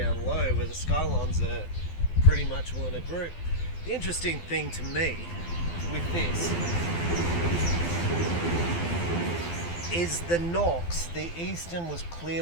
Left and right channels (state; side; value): late; right; 12 ms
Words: low, where the Skylons are pretty much all in a group. The interesting thing to me with this is the nocks. The Easton was